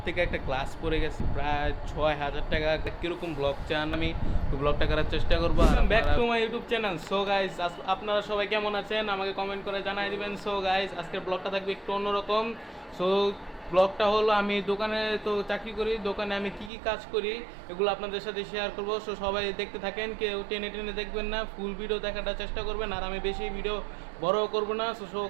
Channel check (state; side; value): drops out; left; at 16.7 s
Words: থেকে একটা গ্লাস পড়ে গেছে, প্রায় 6,000 টাকা। কিরকম ব্লগ চান আমি ব্লগটা করার চেষ্টা করবো। Back to my YouTube channel. So guys, আপনারা সবাই কেমন আছেন আমাকে কমেন্ট করে জানাই দিবেন। সো গাইস, আজকের ব্লগটা থাকবে একটু অন্যরকম। সো ব্লগটা হলো, আমি দোকানে তো চাকরি করি, দোকানে আমি কি কি কাজ করি এগুলো আপনাদের সাথে শেয়ার করবো। সো সবাই দেখতে থাকেন, কেউ টেনে টেনে দেখবেন না, ফুল ভিডিও দেখাটা চেষ্টা করবেন। আর আমি বেশি ভিডিও বড় করব না। সো